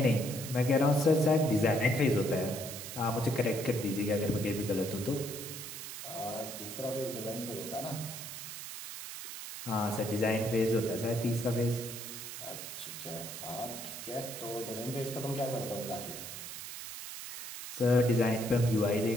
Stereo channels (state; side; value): noise; right; hiss, 9 dB below the sound